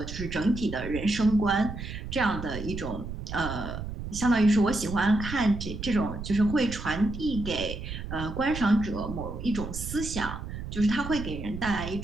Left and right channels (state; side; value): noise; right; rumble, 8 dB below the sound